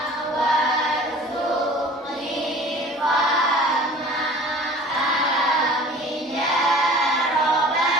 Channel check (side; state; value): both; normal; correlation 0.44